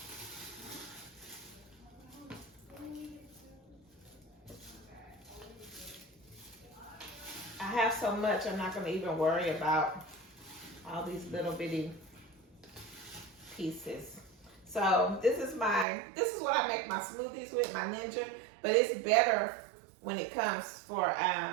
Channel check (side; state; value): left; drops out; at 15.9 s